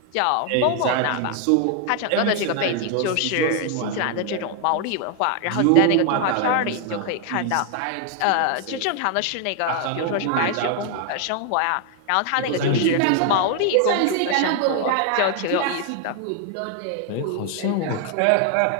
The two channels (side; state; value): both; different; correlation 0.00